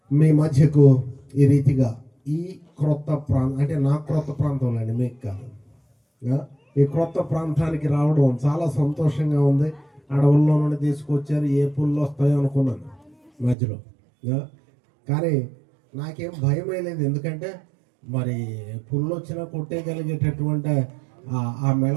మీ మధ్యకు ఈ రీతిగా ఈ క్రొత్త ప్రాంతం, అంటే నా క్రొత్త ప్రాంతంలో అండి, మీకు కాదు, ఈ క్రొత్త ప్రాంతానికి రావడం చాలా సంతోషంగా ఉంది. అడవుల్లో నుండి తీసుకొచ్చారు, ఏ పుల్లు వస్తాయో అనుకున్నాను మధ్యలో, కానీ నాకేం భయం లేదు. ఎందుకంటే మరి పుల్లు వచ్చినా కొట్టేయగలిగేటటువంటి ఆ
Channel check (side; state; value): left; drops out; at 13.6 s